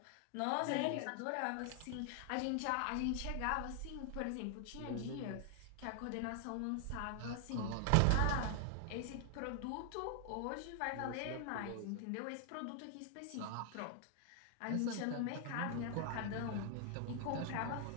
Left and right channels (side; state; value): both; different; correlation 0.00